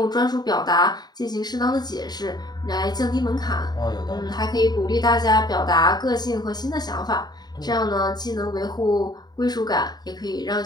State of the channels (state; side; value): late; right; 0.20 ms